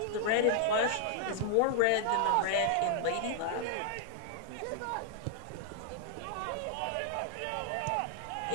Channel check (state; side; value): different; both; correlation -0.01